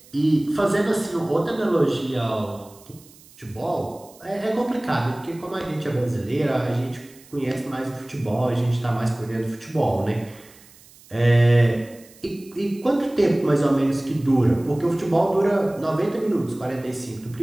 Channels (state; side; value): noise; right; hiss, 25 dB below the sound